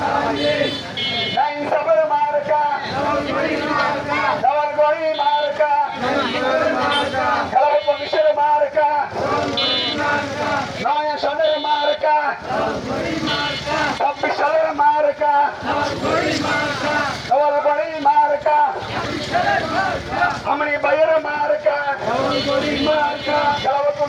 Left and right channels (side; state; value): both; identical; correlation 1.00